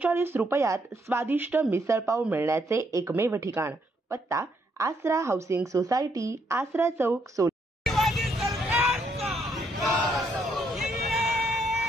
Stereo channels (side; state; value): both; normal; correlation 0.73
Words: रुपयात स्वादिष्ट मिसळपाव मिळण्याचे एकमेव ठिकाण। पत्ता आसरा हाऊसिंग सोसायटी, आसरा चौक, सोलापूर।